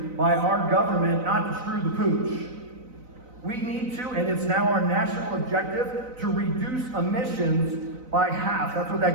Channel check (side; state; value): left; late; 4.0 ms